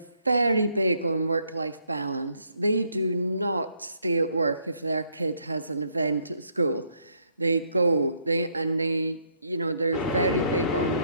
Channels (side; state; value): both; inverted; correlation -0.71